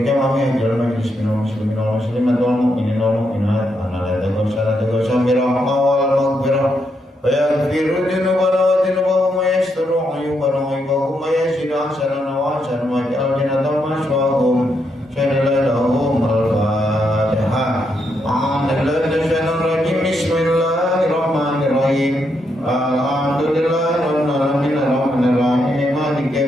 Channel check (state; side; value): normal; both; correlation 0.80